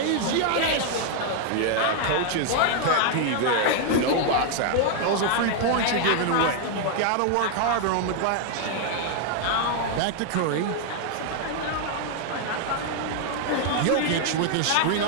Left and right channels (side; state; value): both; different; correlation 0.00